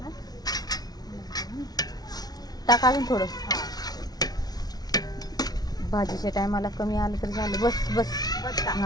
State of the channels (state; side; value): late; right; 0.19 ms